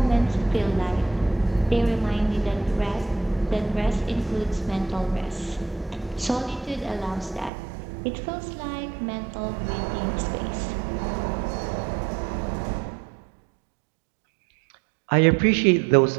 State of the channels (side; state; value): left; drops out; at 7.5 s